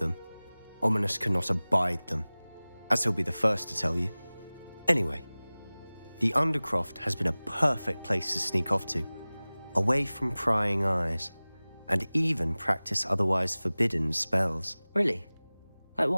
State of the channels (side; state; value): both; inverted; correlation -0.99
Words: Ominous cannot abide them, as he'll be the first to tell you. Anyway, the Undercroft has been a perfect place to sneak off to, away from prying eyes, and even practice otherwise forbidden spells. Really? Like